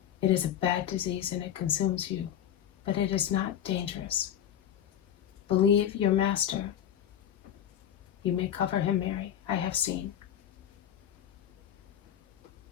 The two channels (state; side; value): quieter; right; 10.0 dB